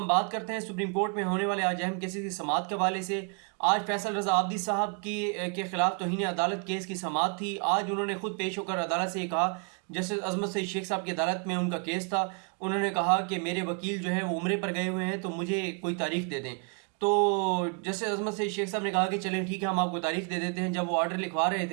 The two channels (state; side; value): quieter; left; 39.7 dB